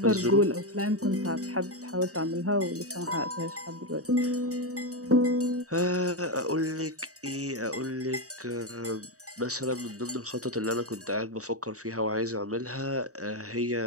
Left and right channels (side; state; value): left; late; 0.66 ms